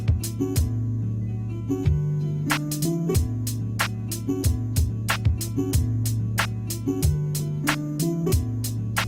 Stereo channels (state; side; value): identical; both; correlation 1.00